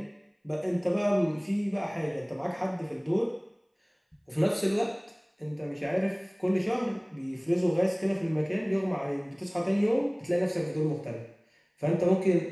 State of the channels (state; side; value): identical; both; correlation 1.00